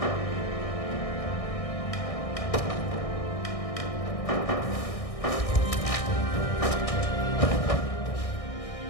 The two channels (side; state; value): right; late; 1.6 ms